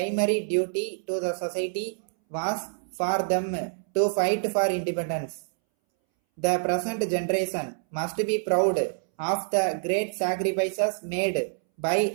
duty to the society was for them to fight for independence. The present generation must be proud of the great sacrifices made by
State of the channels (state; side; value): silent; left; 60 dB below the other